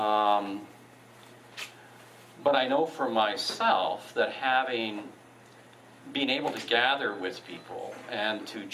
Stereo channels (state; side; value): identical; both; correlation 1.00